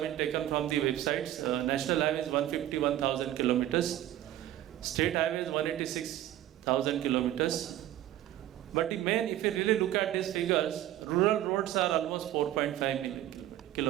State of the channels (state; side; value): quieter; left; 13.1 dB